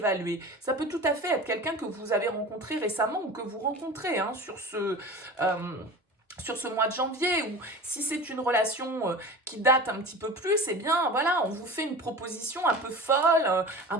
Ça peut tout à fait être quelqu'un que vous avez rencontré récemment ou que vous rencontrez hein, sur ce mois de janvier, ou si c'est une relation qui date un petit peu plus, eh bien voilà, on vous fait une proposition un peu folle, un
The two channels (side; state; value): both; normal; correlation 0.35